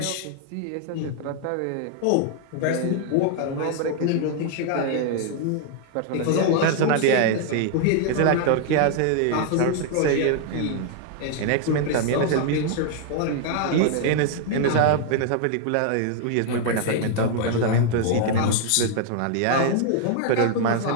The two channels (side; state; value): both; different; correlation 0.00